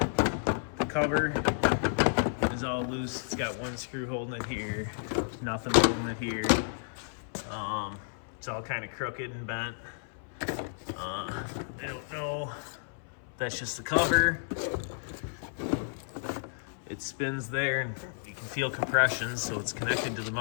cover is all loose. It's got one screw holding it here. There's nothing holding it here. It's all kind of crooked and bent. I don't know. That's just the cover. It spins there and you can feel compression, so it's connected to the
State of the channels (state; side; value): silent; right; 56 dB below the other